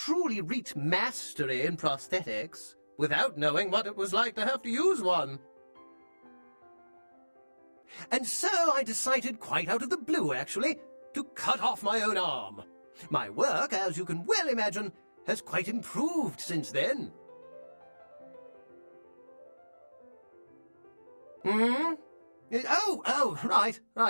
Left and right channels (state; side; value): inverted; both; correlation -1.00